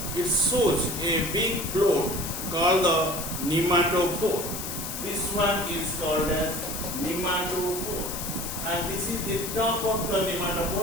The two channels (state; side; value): noise; left; hiss, 6 dB below the sound